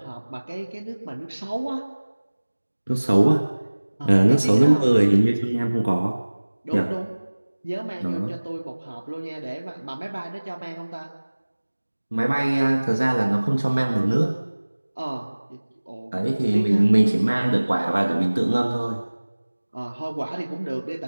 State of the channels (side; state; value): both; inverted; correlation -1.00